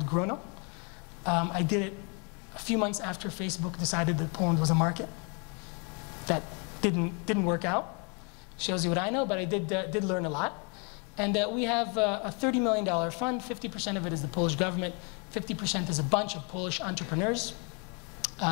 Grono. I did it a few months after Facebook decided that Poland was a market. That didn't work out. Shows you what I know, but I did learn a lot. And we have a $30 million fund. 50% of it is the Polish government. 50% is a bunch of Polish entrepreneurs,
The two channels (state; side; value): quieter; right; 35.3 dB